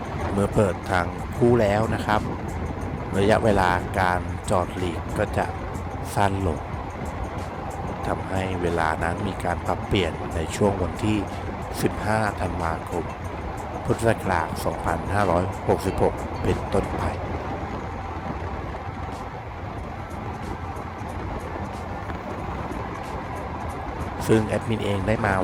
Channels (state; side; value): identical; both; correlation 1.00